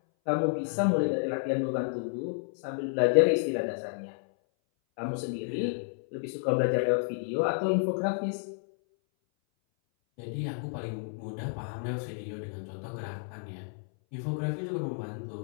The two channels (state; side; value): silent; right; 57 dB below the other